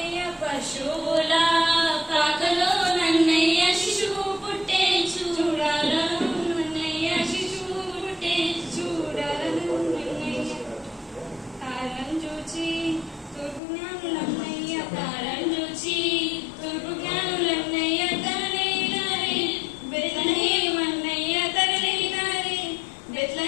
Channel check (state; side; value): drops out; right; at 13.6 s